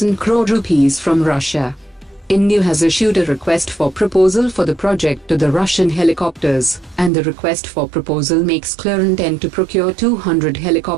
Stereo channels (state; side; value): drops out; left; at 7.1 s